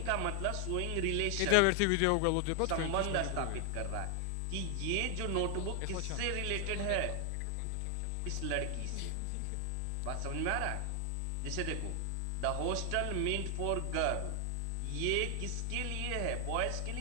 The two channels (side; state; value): both; different; correlation 0.00